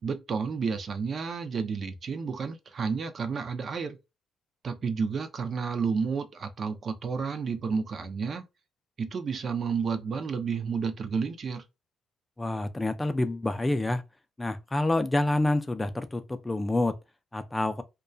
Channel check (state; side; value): normal; both; correlation 0.88